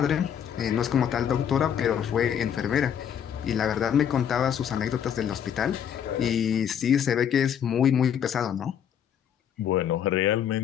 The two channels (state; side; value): quieter; right; 8.8 dB